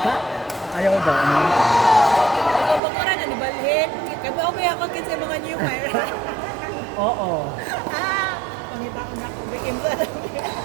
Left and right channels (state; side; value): drops out; left; at 2.8 s